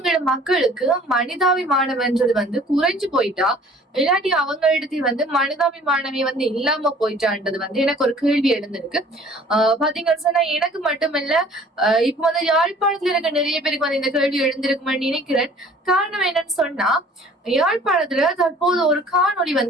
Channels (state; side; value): normal; both; correlation 0.52